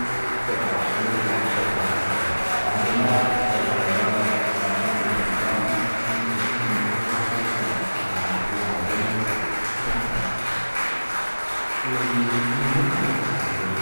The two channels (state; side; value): inverted; both; correlation -1.00